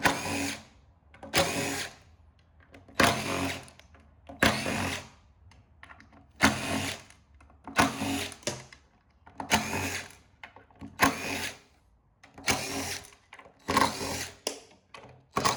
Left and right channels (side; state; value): both; identical; correlation 1.00